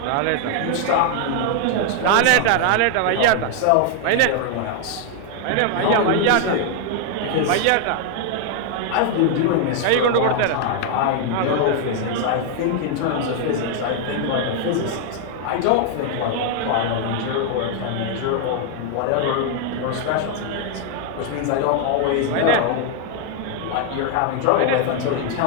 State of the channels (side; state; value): both; different; correlation 0.00